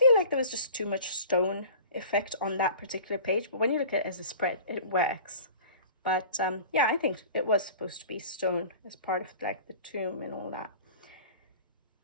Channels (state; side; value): inverted; both; correlation -0.41